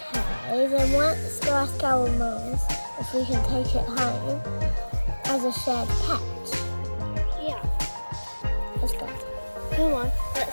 Okay, then let's go ask our mums if we can take it home as a shared pet. yeah. Let's go. Come on,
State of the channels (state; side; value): inverted; both; correlation -1.00